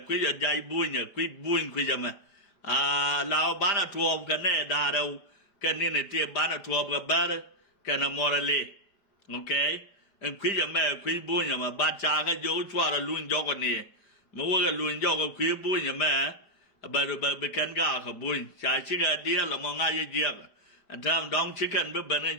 kwiye jai bunya kwiye me lao bana tuom ka ne da đâu ka ne ne te bana tuom ka bar ka na morale okay kwiye me kwiye bunya ma ba cha ka jo chwa ra lun jo ko ni mo wo ga lun jo ko kwiye bunya me ba be kan ga ka bun cha chi ga dia la mo nga ye je ga tam dong chicken be ban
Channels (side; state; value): right; late; 5.1 ms